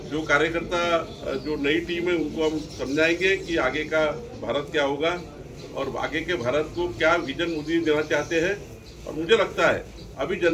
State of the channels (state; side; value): identical; both; correlation 1.00